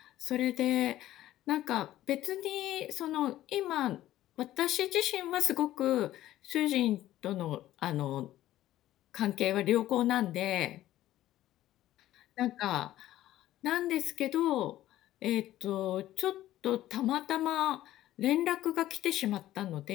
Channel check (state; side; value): quieter; right; 14.1 dB